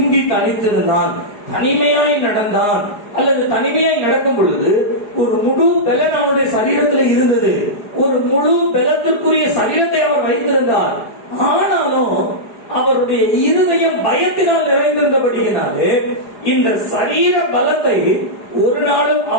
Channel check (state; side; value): late; right; 4.9 ms